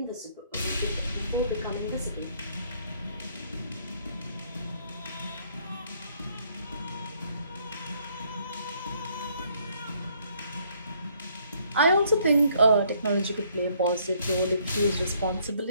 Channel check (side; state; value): both; inverted; correlation -0.66